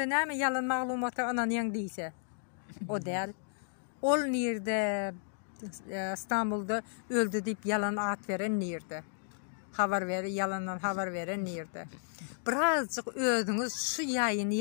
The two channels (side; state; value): right; silent; digital silence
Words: ne mi yalan mağlumatı ananyan değilse. O değil. Ol nerede İstanbul'da öldü deyip yalan at veren nerede? Haber veren, yalandan haber veren nerede? Birazcık ödünüz şu